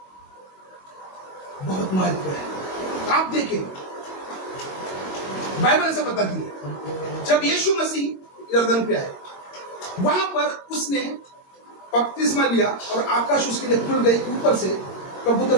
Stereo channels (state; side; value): late; right; 22 ms